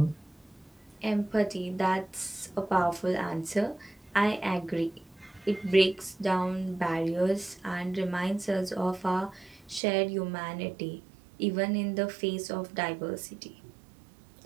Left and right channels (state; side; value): drops out; left; at 9.8 s